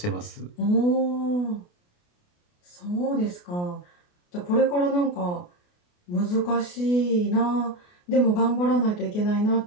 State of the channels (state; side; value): late; right; 28 ms